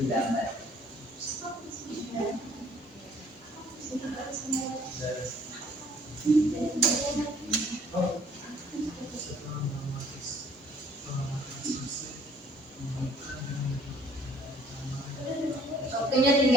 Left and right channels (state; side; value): normal; both; correlation 0.58